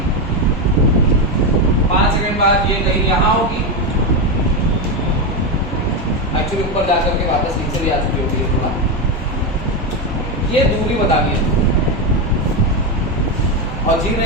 5 सेकंड बाद ये कहीं यहां होगी, एक्चुअली ऊपर जाकर के वापस नीचे भी आ चुकी होगी थोड़ा। ये दूरी बतानी है और जी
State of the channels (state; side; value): normal; both; correlation 0.11